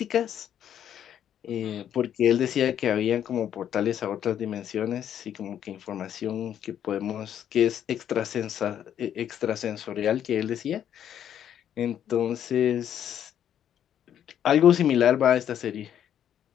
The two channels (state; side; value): quieter; right; 9.9 dB